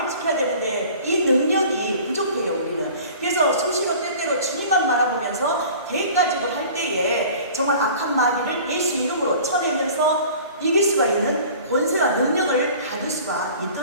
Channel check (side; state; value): both; inverted; correlation -0.45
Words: 지켜야 되는데 이 능력이 부족해요. 우리는. 그래서 수시로 때때로 주님만 바라보면서 계획가지고 할 때에 정말 악한 마귀를 예수 이름으로 쳐내면서 이길 수가 있는 권세와 능력을 받을 수가